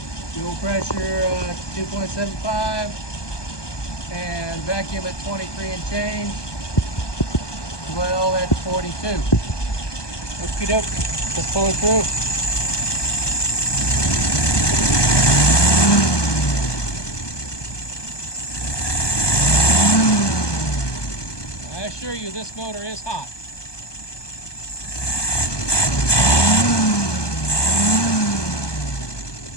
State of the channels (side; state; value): right; late; 1.2 ms